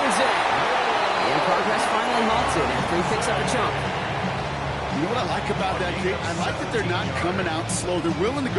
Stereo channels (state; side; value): identical; both; correlation 1.00